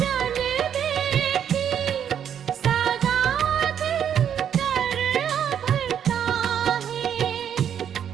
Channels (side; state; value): left; quieter; 8.9 dB